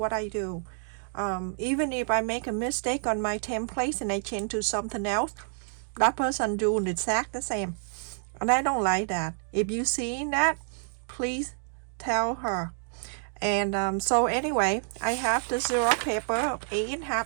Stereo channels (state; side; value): silent; left; 59 dB below the other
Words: I do. Even if I make a mistake on my templates and I change to something else, that person doing exact the same, and I don't like that. If you see that, please tell her. And so anyway, I have the zero paper of